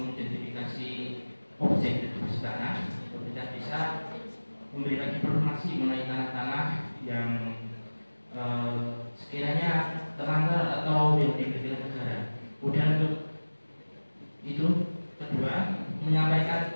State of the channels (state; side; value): inverted; both; correlation -1.00